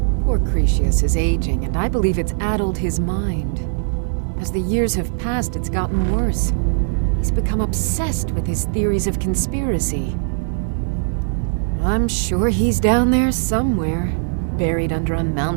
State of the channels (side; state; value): left; silent; digital silence